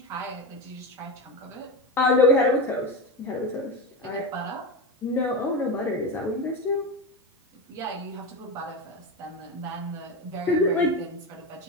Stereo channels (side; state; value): both; normal; correlation 0.19